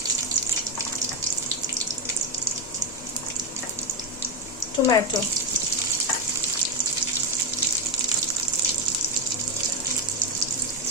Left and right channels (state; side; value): normal; both; correlation 0.08